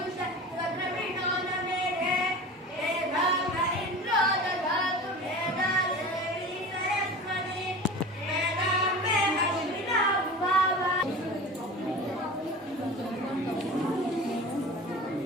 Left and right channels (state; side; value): normal; both; correlation 0.34